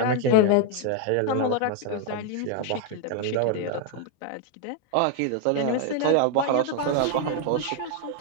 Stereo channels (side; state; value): both; different; correlation 0.00